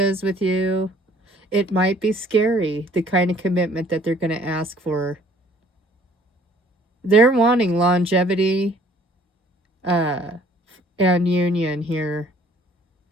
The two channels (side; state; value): both; normal; correlation 0.57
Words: with you. It might be scary, the kind of commitment that they're going to ask for. They're wanting longevity and union here.